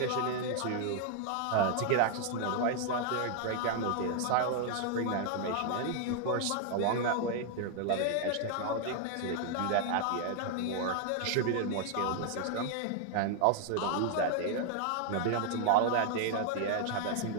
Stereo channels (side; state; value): both; different; correlation 0.00